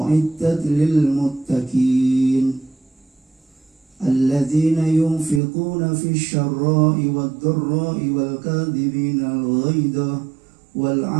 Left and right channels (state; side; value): drops out; left; at 5.4 s